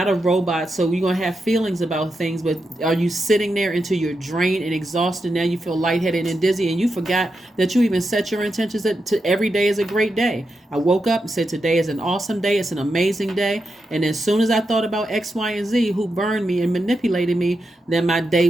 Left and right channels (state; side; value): normal; both; correlation 0.87